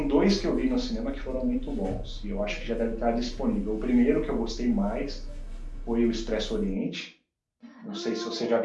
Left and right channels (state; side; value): identical; both; correlation 1.00